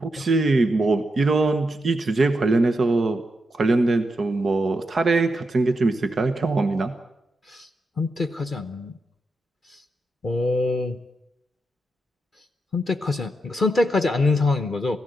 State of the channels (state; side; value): normal; both; correlation 0.85